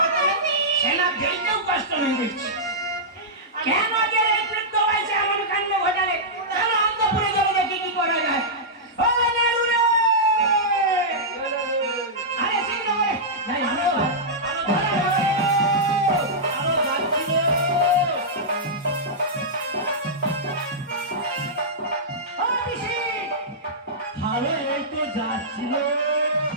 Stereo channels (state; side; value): normal; both; correlation -0.12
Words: নেই, সেনা ফেলতেও কষ্ট নেই দেখছি। কেন যে এই বৃদ্ধ বয়সে এমন কাণ্ড ঘটালে? কেন অন্তপুরে যাবো দেখি কি করা যায়? ও নেরুরে আরে এই তো যাচ্ছিল।